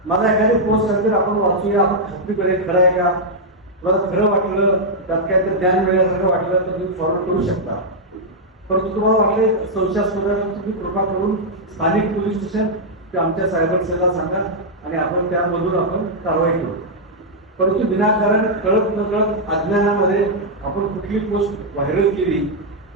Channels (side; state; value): both; normal; correlation -0.04